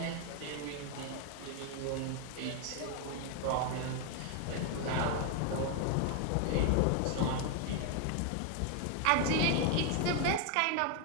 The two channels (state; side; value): different; both; correlation 0.01